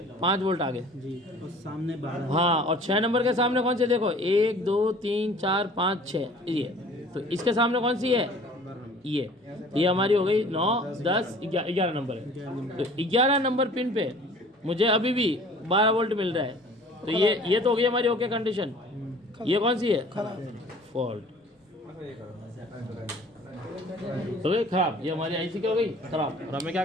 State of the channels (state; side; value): normal; both; correlation 0.49